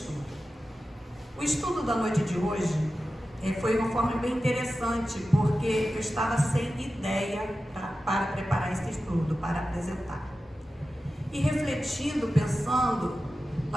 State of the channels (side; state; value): both; normal; correlation 0.93